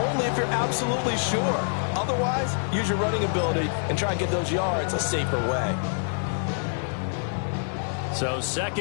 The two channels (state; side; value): silent; right; 61 dB below the other